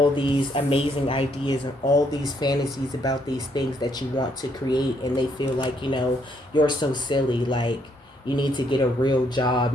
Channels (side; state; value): both; normal; correlation 0.71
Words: these amazing ideas and all these fantasies about these things that you want to create, and they feel like, you know, you're so silly, like you need to get a real